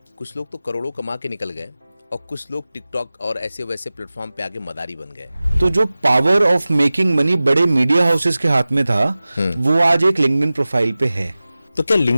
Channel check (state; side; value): inverted; both; correlation -0.97